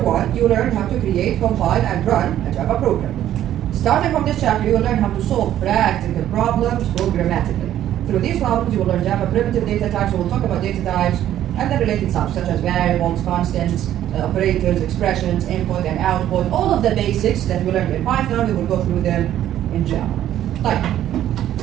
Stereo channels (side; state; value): left; quieter; 11.9 dB